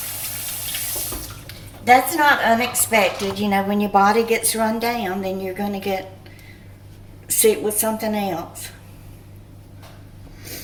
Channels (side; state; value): both; identical; correlation 1.00